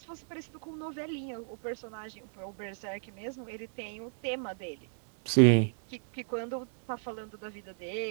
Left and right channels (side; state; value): left; silent; digital silence